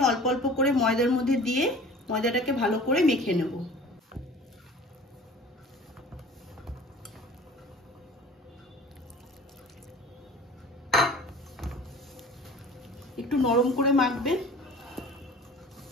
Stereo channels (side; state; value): both; normal; correlation 0.44